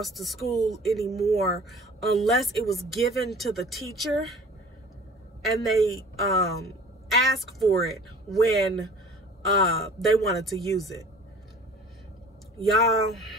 to school anymore unless it was given to the teacher and they asked for it when they wanted to use it. Y'all,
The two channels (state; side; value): normal; both; correlation 0.46